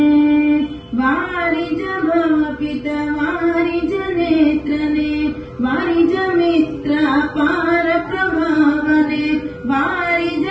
ವಾರಿ ಭವ ಪಿತ ವಾರಿ ನೇತ್ರನೆ ವಾರಿ ಮಿತ್ರ ಪಾರ ಪ್ರಭಾವನೆ ವಾರಿ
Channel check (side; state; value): both; identical; correlation 1.00